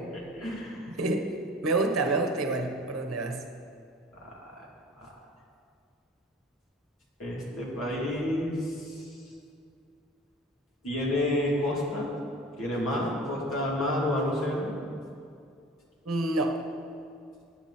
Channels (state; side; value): normal; both; correlation 0.43